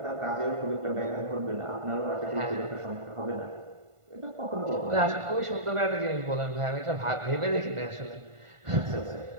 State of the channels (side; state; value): left; late; 1.5 ms